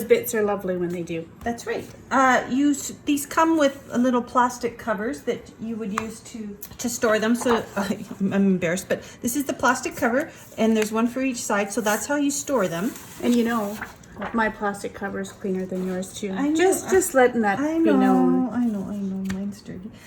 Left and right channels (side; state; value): both; identical; correlation 1.00